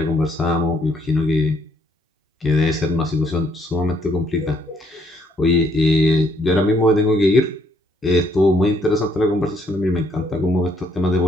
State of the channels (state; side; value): normal; both; correlation 0.68